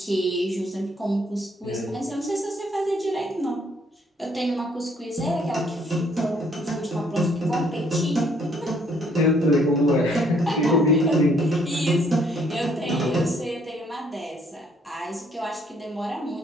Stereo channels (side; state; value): both; normal; correlation 0.66